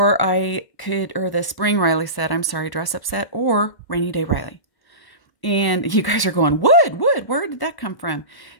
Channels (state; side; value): late; right; 1.1 ms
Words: the Spring Riley set, I'm sorry, dress up set, or Rainy Day Riley. And you guys are going, wood, where did that come from?